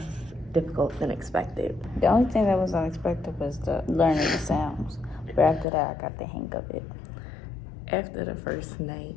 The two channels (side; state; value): right; drops out; at 5.7 s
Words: difficult than expected? The only thing that was unexpected was the learning the sounds. But after that, I got the hang of it. After the first night,